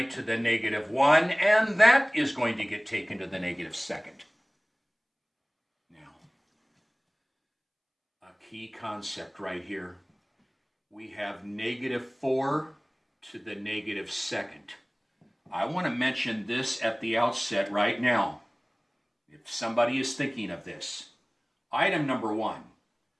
to the -1, and that is going to get taken to the -2nd. Now, a key concept right here. We have -4 to the -2nd. I want to mention this at the outset right now, if somebody is thinking of this. Item number 1.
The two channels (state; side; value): identical; both; correlation 1.00